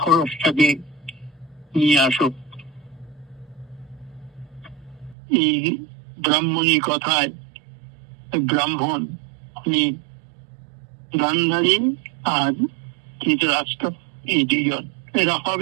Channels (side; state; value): left; drops out; at 5.2 s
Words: নিয়ে আসো। এই ব্রাহ্মণী কথায় ব্রাহ্মণ উনি গান্ধারী আর ধৃতরাষ্ট্র এই দুজন এরা